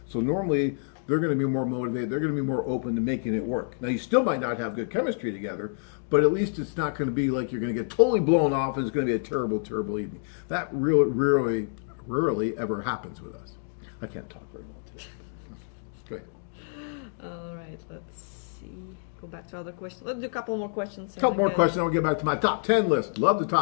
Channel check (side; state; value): right; silent; digital silence